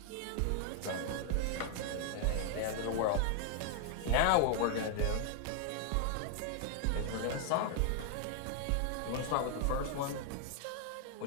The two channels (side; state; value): both; different; correlation 0.00